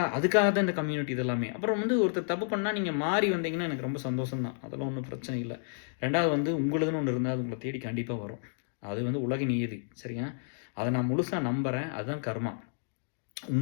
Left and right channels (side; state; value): right; silent; digital silence